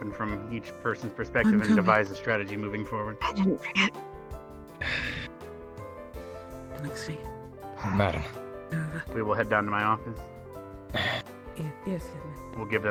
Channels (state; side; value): identical; both; correlation 1.00